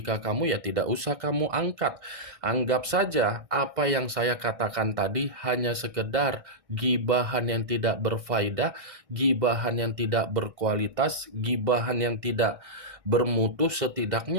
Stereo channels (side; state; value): left; late; 1.6 ms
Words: kamu, ya tidak usah kamu angkat. Anggap saja apa yang saya katakan tadi hanya sekedar gibahan yang tidak berfaedah, gibahan yang tidak berkualitas, gibahan yang tidak bermutu.